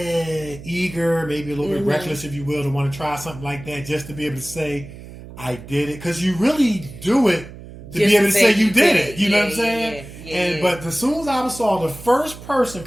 maybe a little bit reckless, if you will, to want to try something like that, just to be able to say, I did it. Because you really do it to be able to say you did it. You know what I'm saying? But as soon as I saw the first person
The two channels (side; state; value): right; noise; hum, 15 dB below the sound